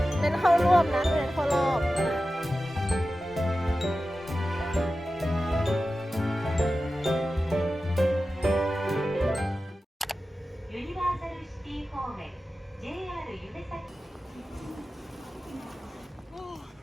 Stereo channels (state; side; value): normal; both; correlation 0.94